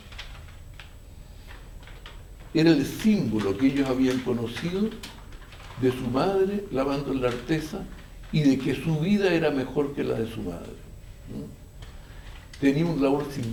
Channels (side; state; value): both; identical; correlation 1.00